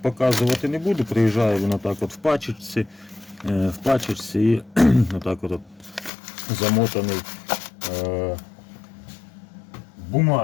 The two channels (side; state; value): right; drops out; at 6.1 s